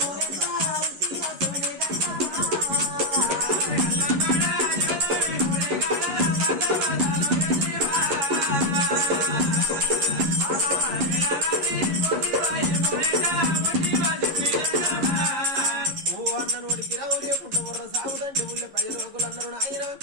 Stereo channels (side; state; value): left; late; 11 ms